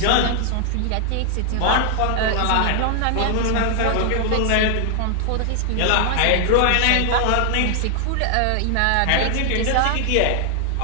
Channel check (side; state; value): both; different; correlation 0.00